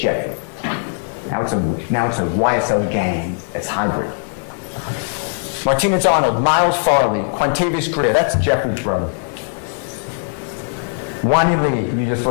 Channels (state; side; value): silent; right; digital silence